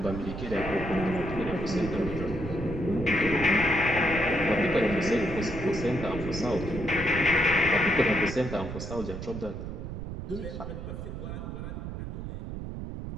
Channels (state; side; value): noise; right; rumble, 7 dB below the sound